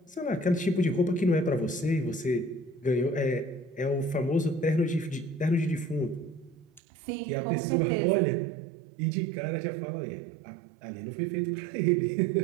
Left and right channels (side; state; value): left; drops out; at 6.8 s